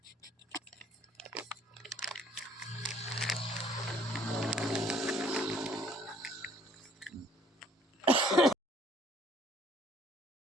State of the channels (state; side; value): normal; both; correlation 0.58